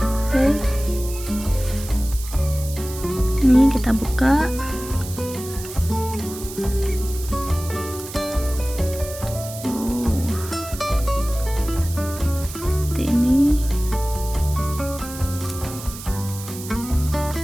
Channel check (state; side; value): noise; right; hiss, 12 dB below the sound